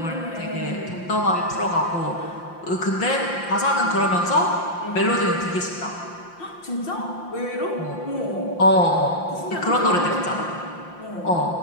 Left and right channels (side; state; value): right; late; 5.7 ms